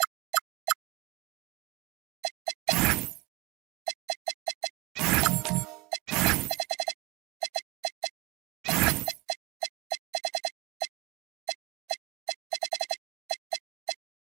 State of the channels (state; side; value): quieter; left; 24.0 dB